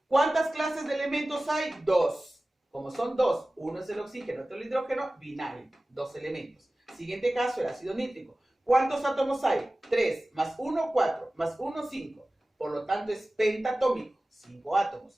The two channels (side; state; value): both; normal; correlation 0.97